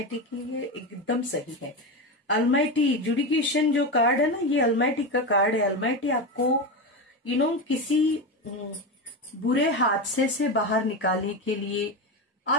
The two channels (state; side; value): normal; both; correlation 0.17